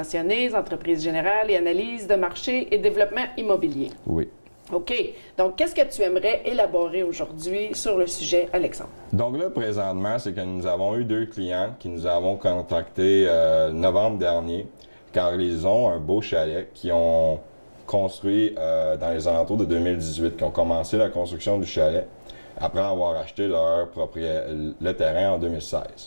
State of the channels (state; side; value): inverted; both; correlation -1.00